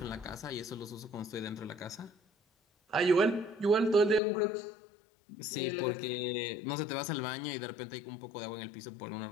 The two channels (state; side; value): drops out; right; at 4.2 s